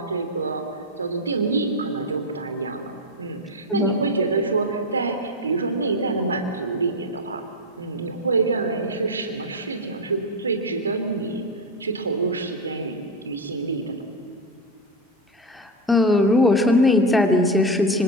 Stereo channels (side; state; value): both; normal; correlation 0.13